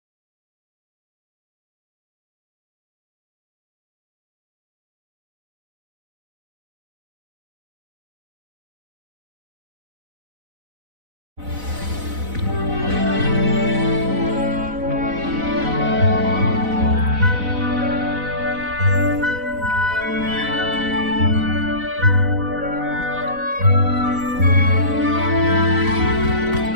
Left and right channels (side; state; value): left; late; 4.0 ms